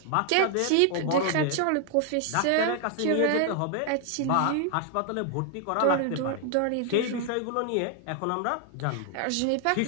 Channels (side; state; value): both; different; correlation 0.00